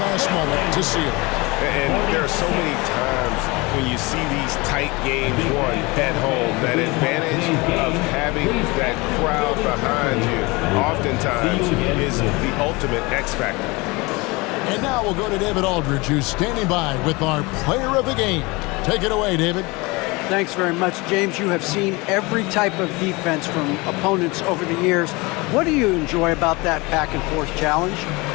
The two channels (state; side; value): quieter; right; 24.8 dB